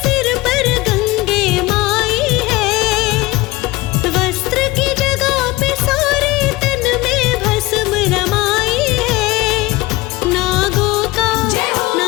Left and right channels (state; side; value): quieter; right; 20.4 dB